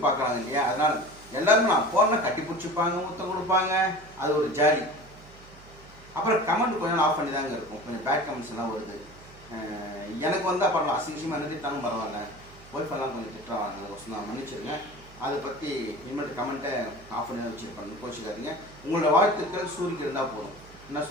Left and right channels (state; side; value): noise; right; hum, 22 dB below the sound